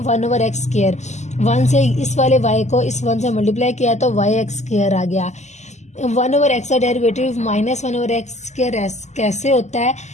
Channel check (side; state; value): right; late; 0.33 ms